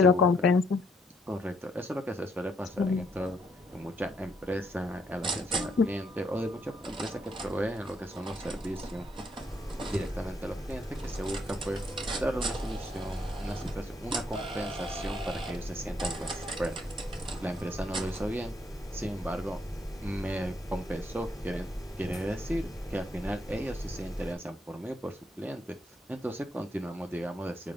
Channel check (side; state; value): both; normal; correlation 0.72